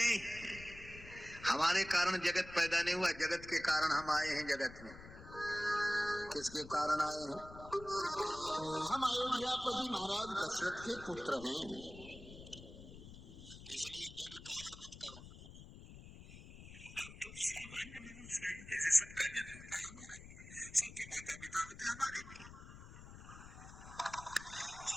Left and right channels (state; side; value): noise; left; rumble, 15 dB below the sound